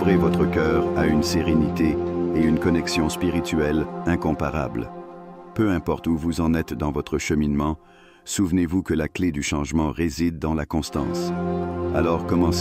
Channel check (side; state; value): both; identical; correlation 1.00